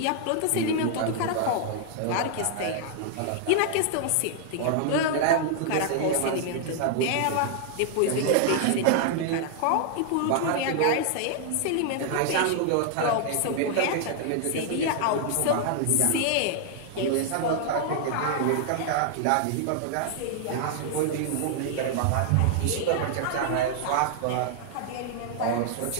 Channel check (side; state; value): both; different; correlation 0.00